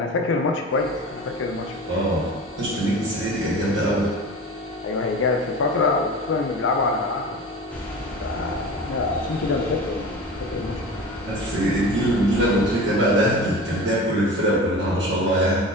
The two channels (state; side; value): normal; both; correlation 0.34